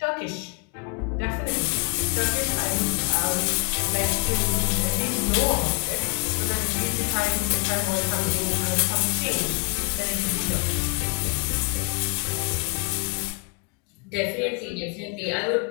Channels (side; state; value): right; quieter; 33.8 dB